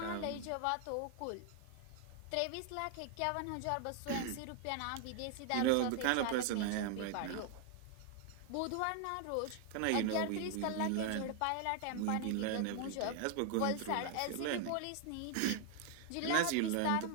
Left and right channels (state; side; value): different; both; correlation 0.00